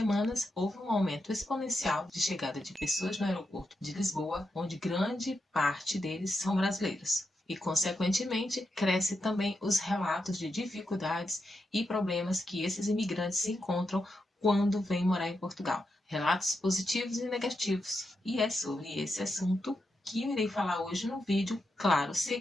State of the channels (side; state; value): both; normal; correlation 0.86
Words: houve um aumento exponencial de chegada de pessoas no aeroporto de Lisboa, onde grande parte deles são brasileiros. E, consequentemente, cresce também os relatos de dificuldades e problemas que esses imigrantes se encontram quando vêm morar em Portugal. Relatos positivos e negativos. E é sobre esse assunto que eu irei falar hoje no vídeo, claro,